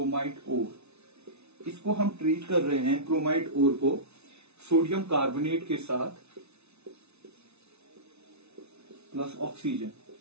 ओर। इसको हम ट्रीट कर रहे हैं क्रोमाइट ओर को सोडियम कार्बोनेट के साथ plus oxygen.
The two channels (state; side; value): late; left; 0.81 ms